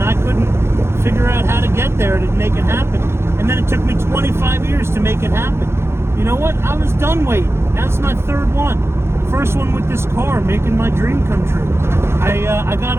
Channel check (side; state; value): left; late; 0.12 ms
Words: I couldn't figure out how to get there to make it happen. And then it took me 25 years to make it happen. You know what? I was done waiting. That's my third one. First one with this car, making my dream come true. I got